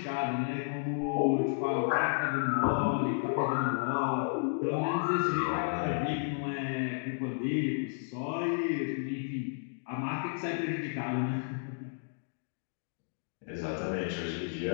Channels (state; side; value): silent; right; digital silence